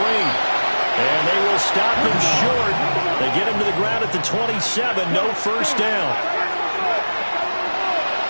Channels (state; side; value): inverted; both; correlation -1.00